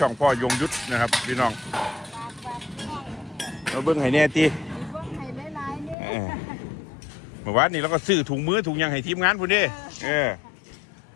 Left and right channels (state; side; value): drops out; right; at 6.0 s